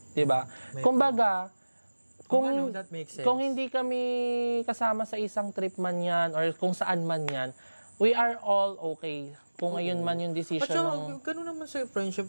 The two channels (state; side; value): inverted; both; correlation -1.00